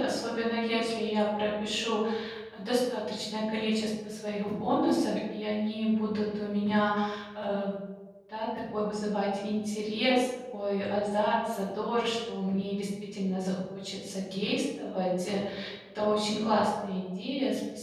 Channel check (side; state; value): both; identical; correlation 1.00